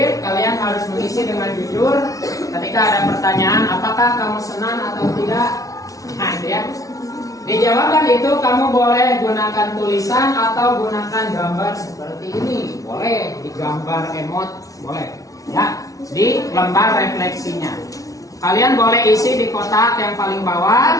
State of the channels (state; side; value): late; right; 0.17 ms